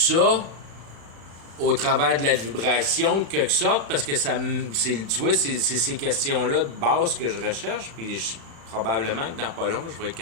au travers de la vibration, de quelque sorte, parce que tu vois, c'est ces questions-là de base que je recherche, puis probablement que dans pas long, je vais être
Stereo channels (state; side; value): late; left; 35 ms